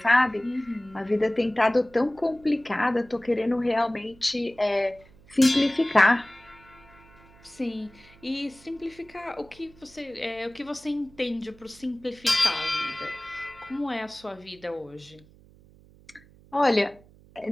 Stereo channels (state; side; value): noise; right; hum, 26 dB below the sound